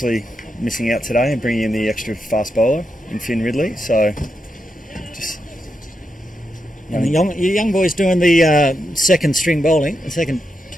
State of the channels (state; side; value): normal; both; correlation 0.85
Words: missing out today and bringing in the extra fast bowler in Finn Ridley. So just... And the young boy's doing the second string bowling, the second